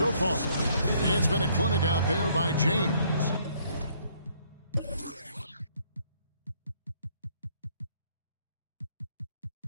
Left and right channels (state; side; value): inverted; both; correlation -0.65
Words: far. It's been a clinic out there by James.